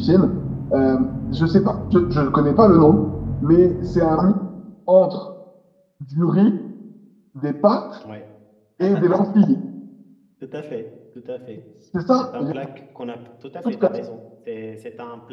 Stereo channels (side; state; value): both; identical; correlation 1.00